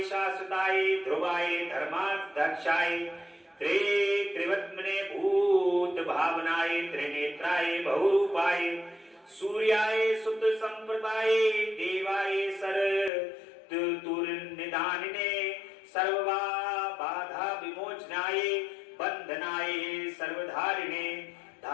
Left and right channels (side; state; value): right; drops out; at 13.1 s